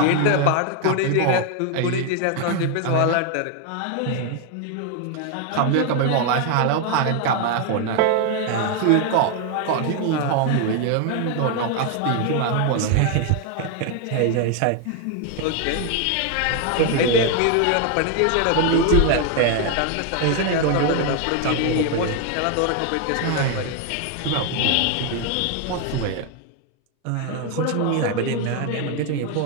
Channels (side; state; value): both; different; correlation 0.01